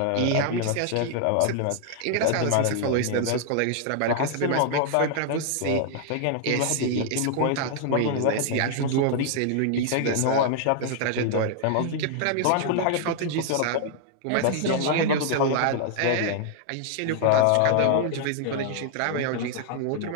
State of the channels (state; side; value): different; both; correlation -0.01